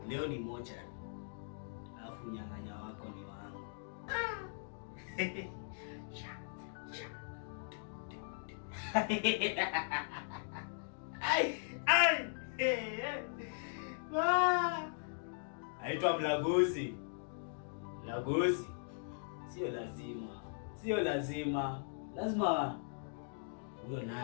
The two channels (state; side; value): silent; right; digital silence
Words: Leo ni mochari. Alafu nyang'anya wako ni wangu. Aitwa Mlaguzi. Mlaguzi. Sio lazima. Lazima huyo